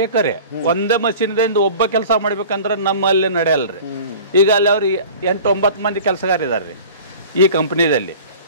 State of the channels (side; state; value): both; inverted; correlation -0.42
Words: ಒಂದೇ ಮಷೀನ್ದಿಂದ ಒಬ್ಬ ಕೆಲಸ ಮಾಡ್ಬೇಕಂದ್ರೆ ನಮ್ಮಲ್ಲಿ ನಡೆಯಲ್ರಿ ಈಗ ಅಲ್ಲಿ ಅವ್ರಿಗೆ 8-9 ಮಂದಿ ಕೆಲಸಗಾರ ಇದಾರ್ರಿ ಈ ಕಂಪನಿದಲ್ಲಿ